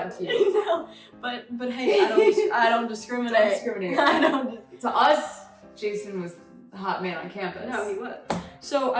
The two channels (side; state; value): both; identical; correlation 1.00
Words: cute. No, but hey, I don't discriminate. Don't discriminate. I don't. To us, Jason was the hot man on campus. No, he was. So